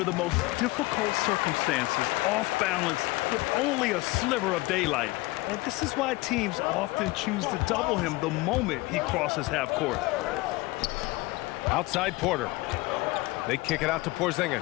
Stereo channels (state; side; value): quieter; right; 21.4 dB